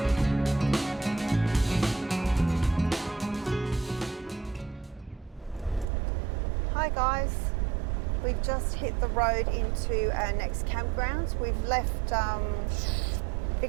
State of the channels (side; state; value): left; drops out; at 5.9 s